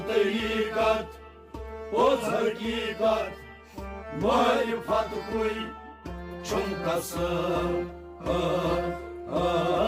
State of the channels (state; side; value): identical; both; correlation 1.00